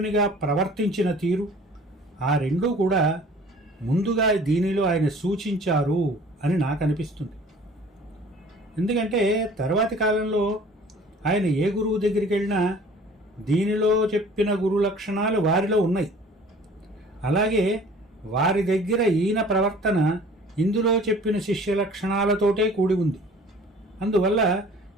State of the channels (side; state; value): both; normal; correlation 0.49